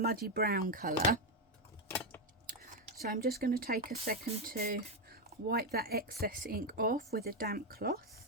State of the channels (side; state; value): both; normal; correlation 0.06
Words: brown colour. So I'm just going to take a second to wipe that excess ink off with a damp